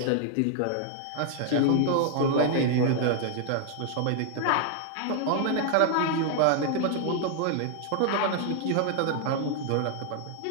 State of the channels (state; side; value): different; both; correlation -0.01